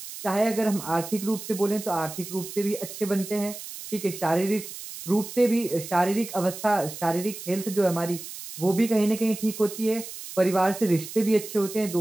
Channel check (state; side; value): noise; right; hiss, 11 dB below the sound